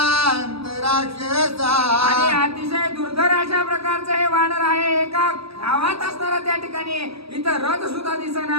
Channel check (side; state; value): left; late; 0.77 ms